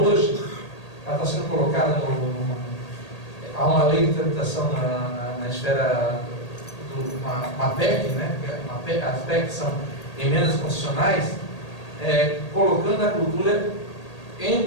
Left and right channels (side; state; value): right; late; 1.8 ms